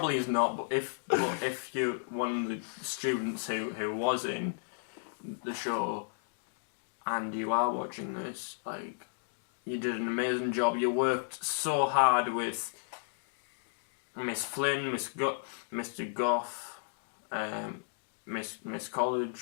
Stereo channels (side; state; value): right; silent; digital silence